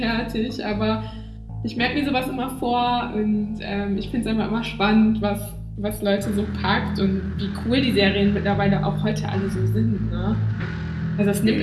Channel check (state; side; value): identical; both; correlation 1.00